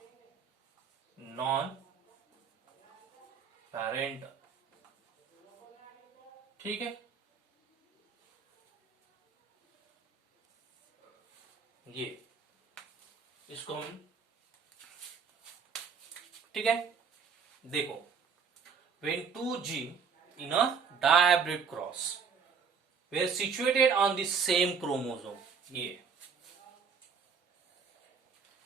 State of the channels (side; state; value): left; quieter; 6.0 dB